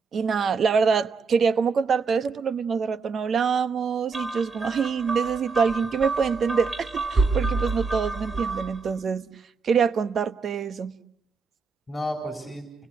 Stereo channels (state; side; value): quieter; left; 5.1 dB